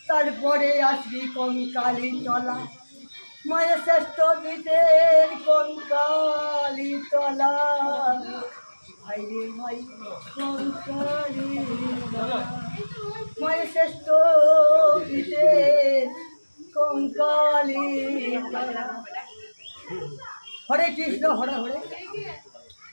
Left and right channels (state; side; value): inverted; both; correlation -1.00